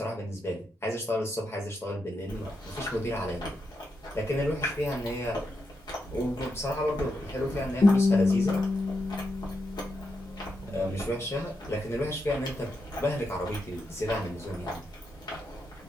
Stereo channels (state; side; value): normal; both; correlation 0.84